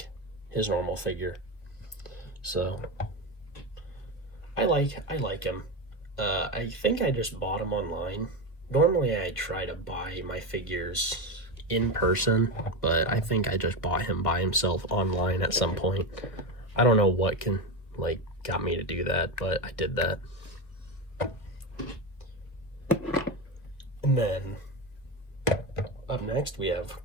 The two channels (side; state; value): right; late; 1.2 ms